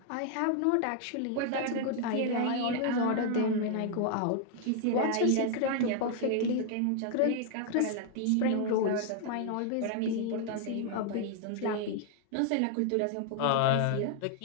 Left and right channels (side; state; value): both; different; correlation 0.00